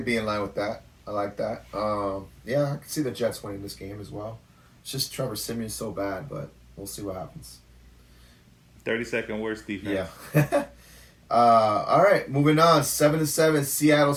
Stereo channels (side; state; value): both; identical; correlation 1.00